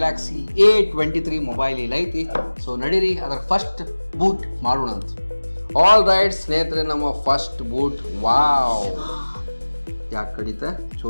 A23 ಮೊಬೈಲ್ ಇಲ್ಲ ಐತಿ. ಸೊ ನಡೀರಿ ಅದರ ಫಸ್ಟ್ ಬೂಟ್ ಮಾಡೋಣ ಅಂತ. ಆಲ್ ರೈಟ್ ಸ್ನೇಹಿತರೆ, ನಮ್ಮ ಫಸ್ಟ್ ಬೂಟ್. ವಾವ್, ಯಾಕೆ ಕಡಿತ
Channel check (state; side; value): inverted; both; correlation -1.00